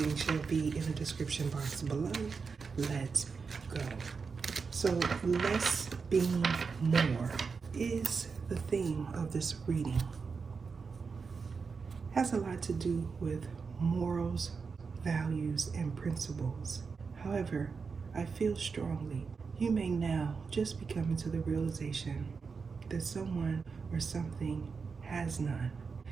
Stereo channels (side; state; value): left; quieter; 5.2 dB